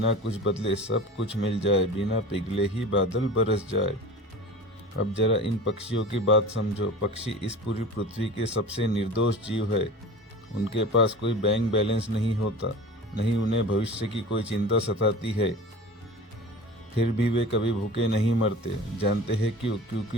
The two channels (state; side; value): normal; both; correlation 0.36